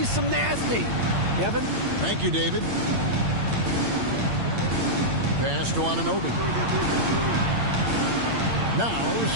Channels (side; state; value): left; late; 8.7 ms